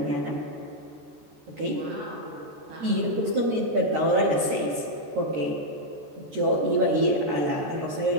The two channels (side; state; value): left; late; 13 ms